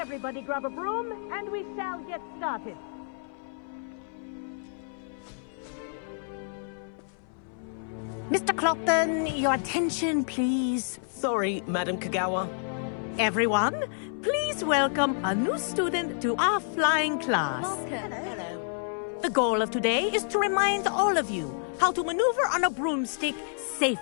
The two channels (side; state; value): right; silent; 58 dB below the other